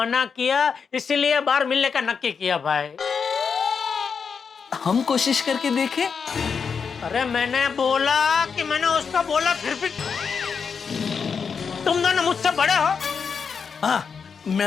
किया, इसीलिए बाहर मिलने का नक्की किया भाई। हम कोशिश करके देखें? अरे मैंने बोला कि मैंने उसको बोला, फिर भी तुम दोनों मुझसे बड़े हो। हाँ,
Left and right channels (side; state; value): right; quieter; 6.0 dB